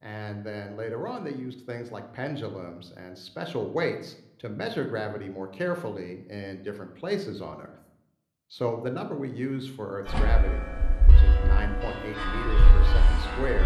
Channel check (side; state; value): both; identical; correlation 1.00